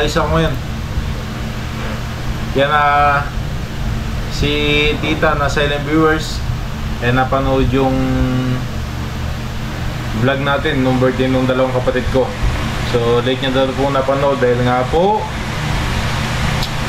ako ngayon. Yan si Tita na silent viewers napanood yung vlog natin nung birthday nung dalawang kapatid ko. So late niya daw po napanood dahil nga po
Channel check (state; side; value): identical; both; correlation 1.00